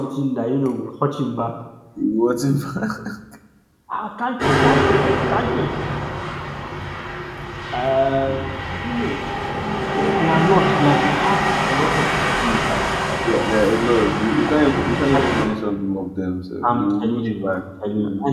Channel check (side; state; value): both; identical; correlation 1.00